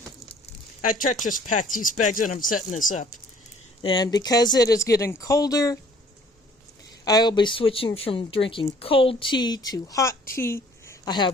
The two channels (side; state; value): both; normal; correlation 0.56